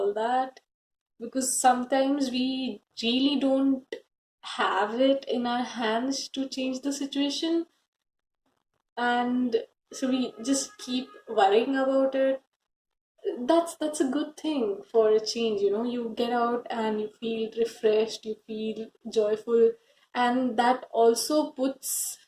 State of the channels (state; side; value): identical; both; correlation 1.00